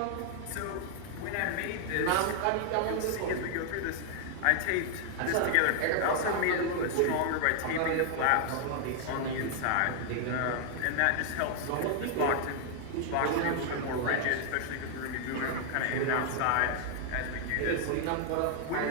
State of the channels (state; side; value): different; both; correlation 0.00